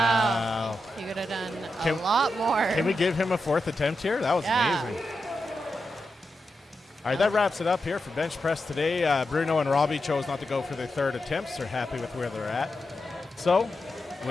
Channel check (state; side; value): normal; both; correlation 0.88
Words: He could have done Can- a lot more. Can we give him a 4th attempt here? That was Yeah. amazing. All right, that wraps it up here for bench press today. Bruno and Robbie chose not to go for their third attempts. They're happy with where they're at. So,